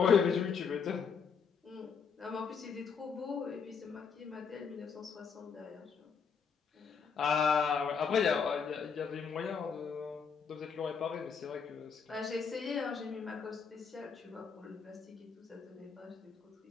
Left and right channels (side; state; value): right; quieter; 6.2 dB